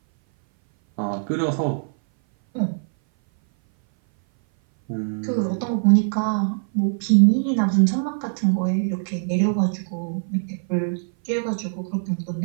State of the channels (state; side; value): silent; left; 59 dB below the other